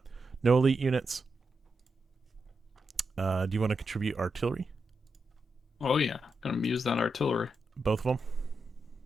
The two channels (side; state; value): both; normal; correlation 0.86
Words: No elite units. Do you want to contribute artillery? Oh yeah, gonna use that artillery. Both of them.